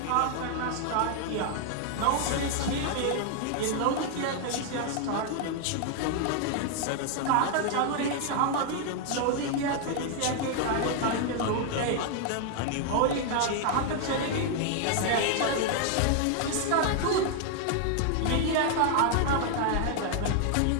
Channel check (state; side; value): different; both; correlation 0.00